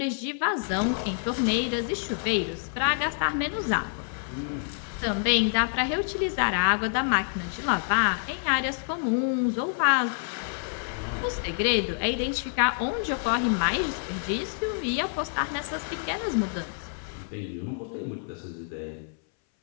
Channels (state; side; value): silent; right; 60 dB below the other